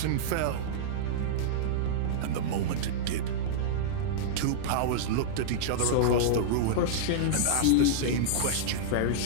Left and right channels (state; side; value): different; both; correlation -0.02